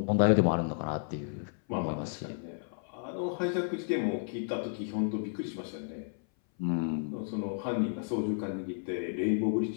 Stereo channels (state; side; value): silent; right; 56 dB below the other